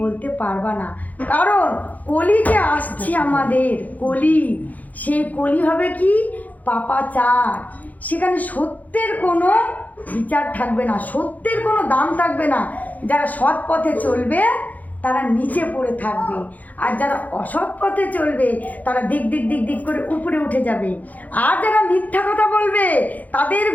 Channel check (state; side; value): late; right; 0.079 ms